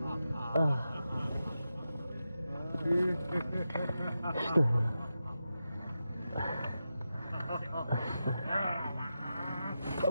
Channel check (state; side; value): inverted; both; correlation -0.90